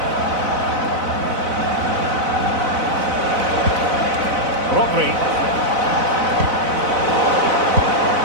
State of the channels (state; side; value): late; left; 4.0 ms